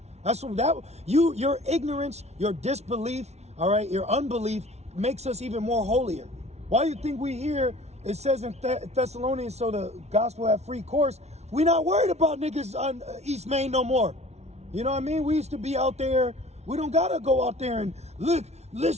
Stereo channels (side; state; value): left; late; 0.31 ms